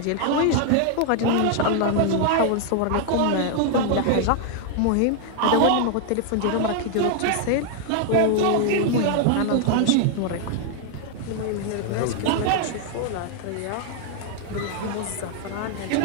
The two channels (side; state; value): both; different; correlation 0.00